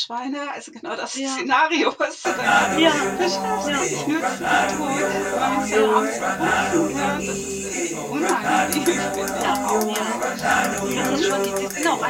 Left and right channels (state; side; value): identical; both; correlation 1.00